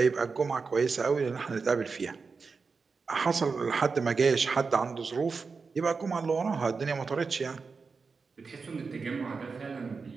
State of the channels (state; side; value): quieter; left; 4.8 dB